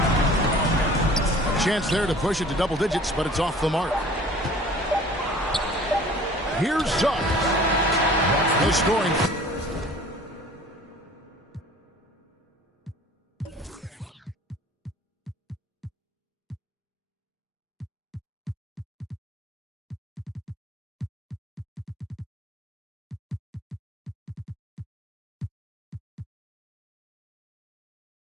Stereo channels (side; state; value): both; normal; correlation 0.47